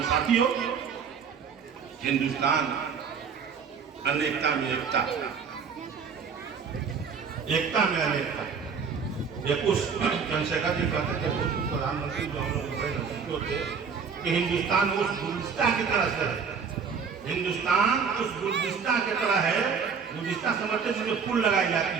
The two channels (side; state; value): left; quieter; 6.2 dB